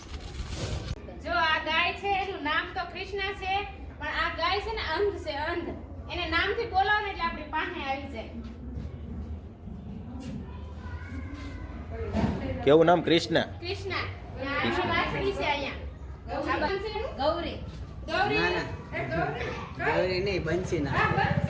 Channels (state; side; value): identical; both; correlation 1.00